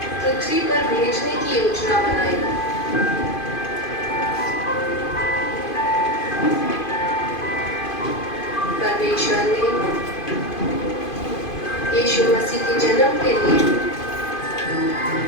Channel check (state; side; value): late; right; 2.5 ms